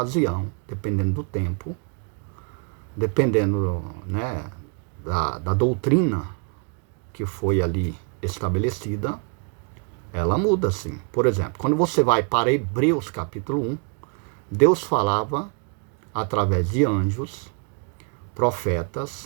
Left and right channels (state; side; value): quieter; left; 38.4 dB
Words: dependendo do tempo, dependendo, né, da doutrina que foi ali estabelecida, ela muda sim. Por exemplo, quando você vai para Hebreus capítulo 1, Deus falava através de anjos,